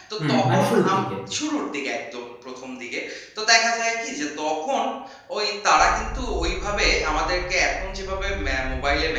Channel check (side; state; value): both; identical; correlation 1.00